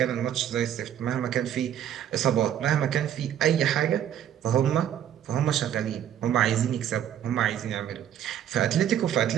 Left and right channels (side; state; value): left; quieter; 10.3 dB